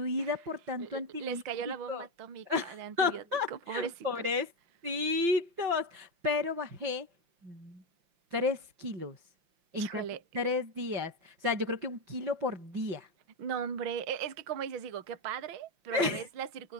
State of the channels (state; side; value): late; left; 5.8 ms